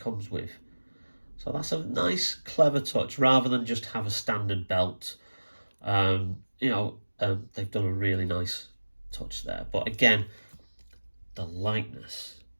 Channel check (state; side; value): inverted; both; correlation -1.00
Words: with. So that's a nice, clever touch, rather than just have a standard belt. They've done a really nice touch there. But again, the likeness